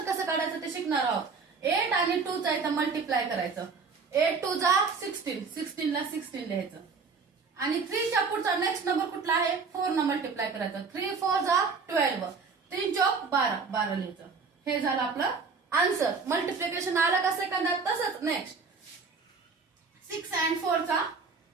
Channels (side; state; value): left; quieter; 4.9 dB